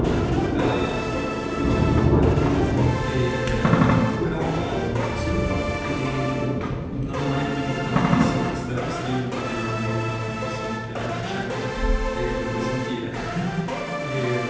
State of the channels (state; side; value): identical; both; correlation 1.00